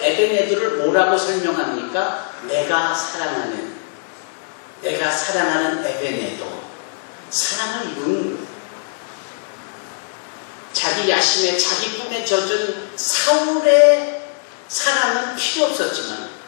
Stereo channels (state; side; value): silent; right; digital silence